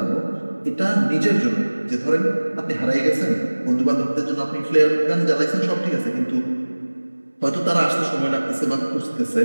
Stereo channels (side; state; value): both; inverted; correlation -1.00